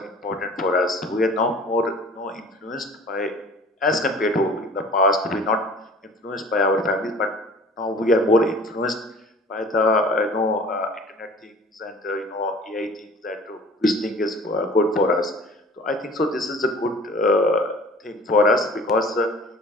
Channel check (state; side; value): normal; both; correlation 0.46